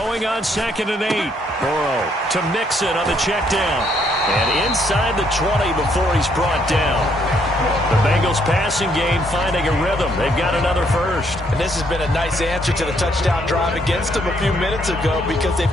on 2nd and 8. Burrow to Mixon on the check down. And inside the 20 before he's brought down. The Bengals passing game finding a rhythm. They've got another first. And this has been a nice answer to the touchdown drive against them a few minutes ago because they've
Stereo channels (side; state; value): both; normal; correlation 0.70